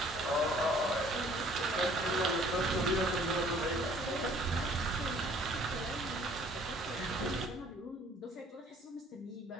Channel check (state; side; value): normal; both; correlation 0.56